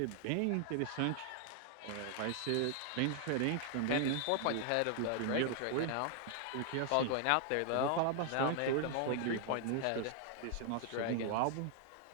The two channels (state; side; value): different; both; correlation 0.00